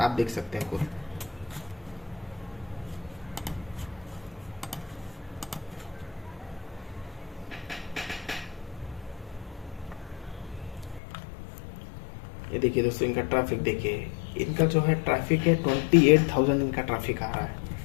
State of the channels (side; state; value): right; drops out; at 11.0 s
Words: आप देख सकते हैं खुद। ये देखिए दोस्तों, इनका ट्रैफिक देखिए, इनका जो है ट्रैफिक है 28,000 इनका ट्रैफिक आ रहा है।